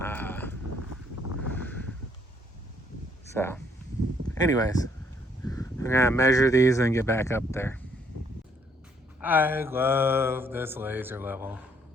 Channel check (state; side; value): normal; both; correlation 0.67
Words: So, anyways, I'm gonna measure these and get back up there. I love this laser level.